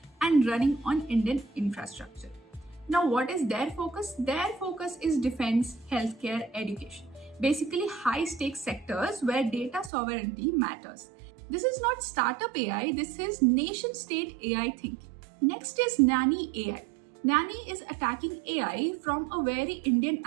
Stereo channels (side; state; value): left; drops out; at 9.9 s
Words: and running on Indian infrastructure. Now, what is their focus? Their focus is defense, healthcare, education. Basically, high stakes sectors where data sovereignty matters. This is not startup AI, this is nation state AI thinking. Next is Nani AI. Nani is attacking AI from a very Indian